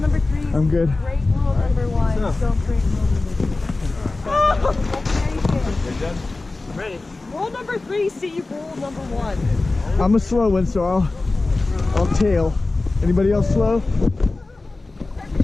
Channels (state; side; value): quieter; right; 3.3 dB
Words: 3, I'm good. break rule number 1. Don't break rule number 2. You're done? Ready. Rule number 3, see rule number 1. I'm a slow one, so I'll tail. Anybody else slow?